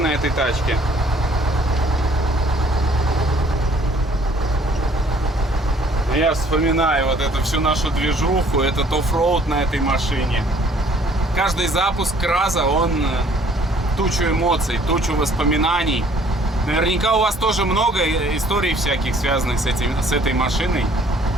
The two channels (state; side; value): normal; both; correlation 0.59